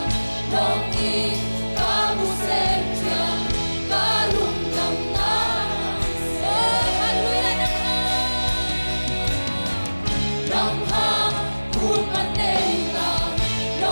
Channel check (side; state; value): both; inverted; correlation -1.00